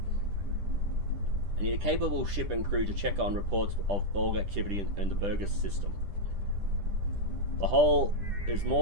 I need a capable ship and crew to check on reports of Borg activity in the Burgess system. The whole is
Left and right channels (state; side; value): late; left; 10 ms